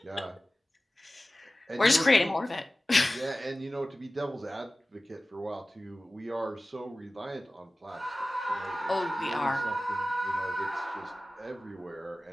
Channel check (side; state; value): both; normal; correlation 0.97